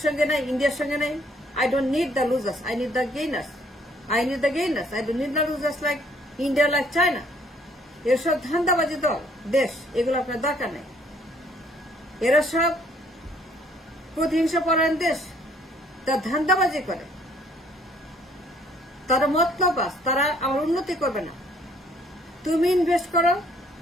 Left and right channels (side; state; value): both; normal; correlation 0.62